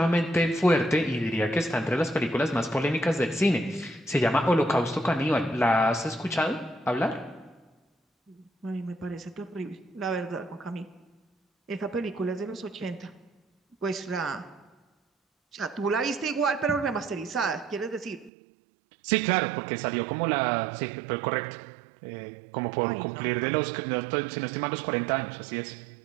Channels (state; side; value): drops out; left; at 18.3 s